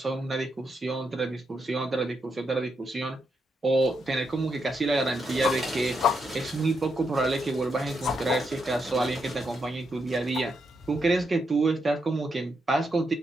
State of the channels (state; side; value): normal; both; correlation 0.81